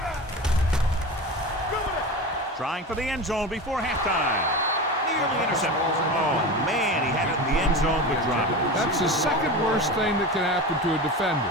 Trying for the end zone before halftime. Nearly intercepted. Oh, man, he had it in the end zone but dropped it. That's the second worst thing that can happen to a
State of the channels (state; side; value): normal; both; correlation 0.27